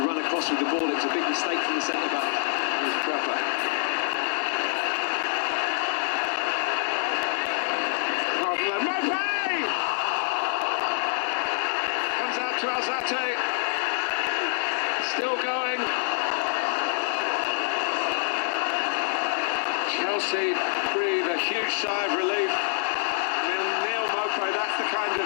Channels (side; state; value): right; silent; digital silence